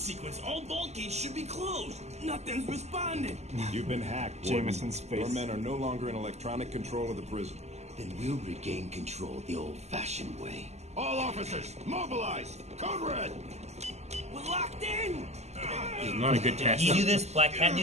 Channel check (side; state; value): left; late; 0.32 ms